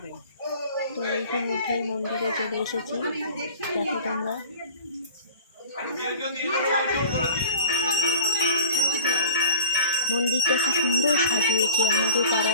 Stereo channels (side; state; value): both; inverted; correlation -0.41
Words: তো ইতিমধ্যেই মন্দিরে চলে এসেছি, দেখো তোমরা। মন্দিরটা কি সুন্দর সাজিয়েছে, আমাদের